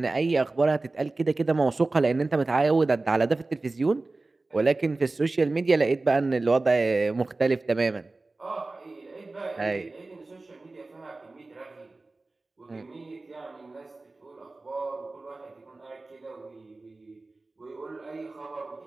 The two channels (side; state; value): left; quieter; 3.3 dB